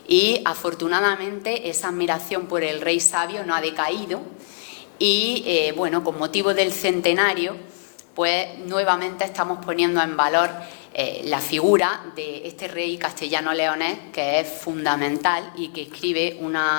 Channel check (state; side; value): silent; right; 63 dB below the other